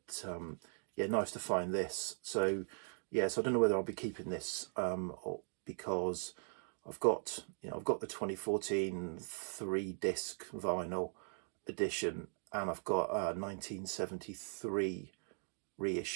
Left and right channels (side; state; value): left; silent; 51 dB below the other